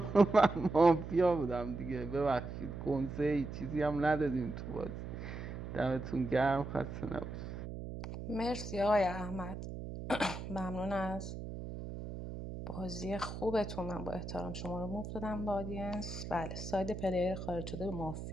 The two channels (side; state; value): right; noise; hum, 8 dB below the sound